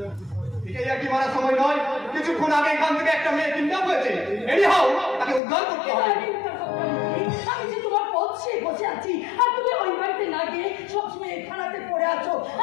এটাই আর কি মারার সময় নয়। কিছুক্ষণ আগে এখান থেকে একটা মেয়ে কিডন্যাপ হয়েছে। এনিহাউ তাকে উদ্ধার করতে হবে। আমি যে তোমার পথে বসে আছি আর তুমি ওই বাড়িতে না গিয়ে সবসময় থানাতে পড়ে আছো।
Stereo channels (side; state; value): right; drops out; at 5.4 s